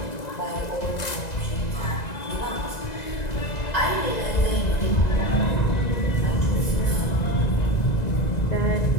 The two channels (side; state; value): right; late; 1.9 ms